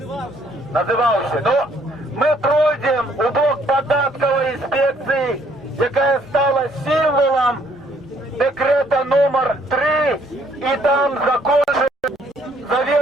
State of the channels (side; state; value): both; normal; correlation 0.65